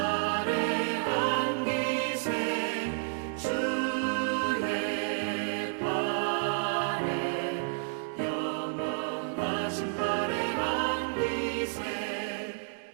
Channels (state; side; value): silent; left; digital silence